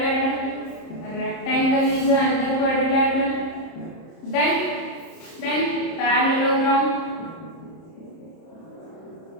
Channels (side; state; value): right; late; 30 ms